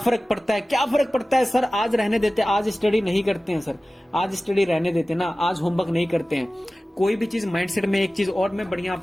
पड़ता है, क्या फर्क पड़ता है सर, आज रहने देते, आज स्टडी नहीं करते हैं सर, आज स्टडी रहने देते ना, आज होमवर्क नहीं करते हैं। कोई भी चीज माइंडसेट में, एक चीज और मैं बढ़िया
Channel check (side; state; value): both; normal; correlation 0.97